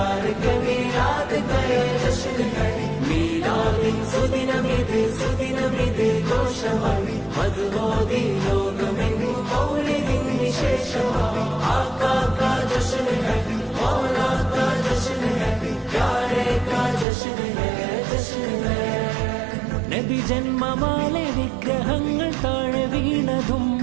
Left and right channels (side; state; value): left; drops out; at 17.1 s